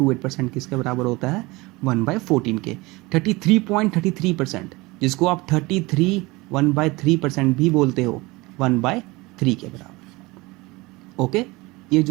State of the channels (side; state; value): left; quieter; 22.6 dB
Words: किसके बराबर होता है, 1/14 के। 33.33%, जिसको आप 33 1/3% भी बोलते हो, 1/3 के बराबर। ओके, ये